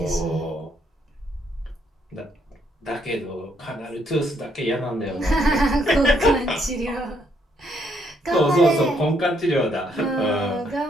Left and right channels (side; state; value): both; normal; correlation 0.71